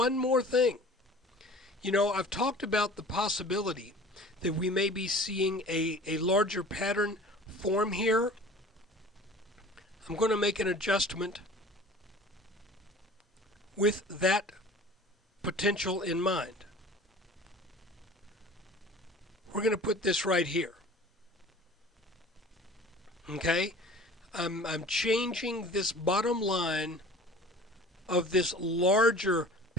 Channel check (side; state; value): both; normal; correlation 0.44